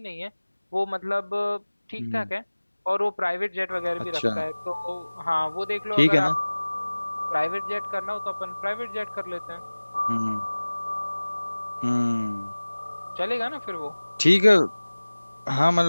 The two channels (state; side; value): inverted; both; correlation -1.00